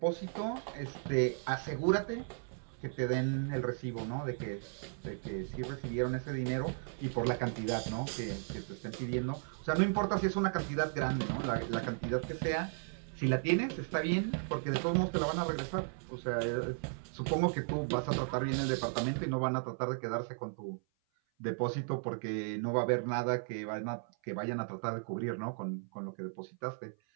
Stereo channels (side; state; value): left; silent; 54 dB below the other